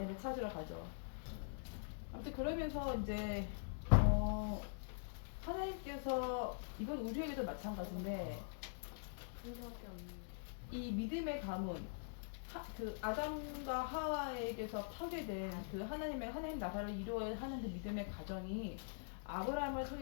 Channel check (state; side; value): silent; right; digital silence